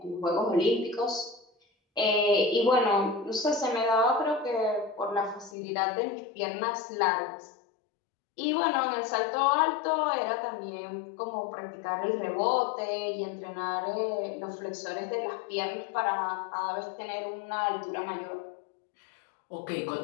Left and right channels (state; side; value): drops out; right; at 5.6 s